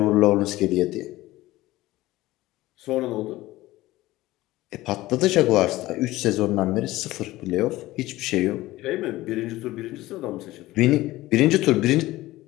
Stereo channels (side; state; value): right; quieter; 17.5 dB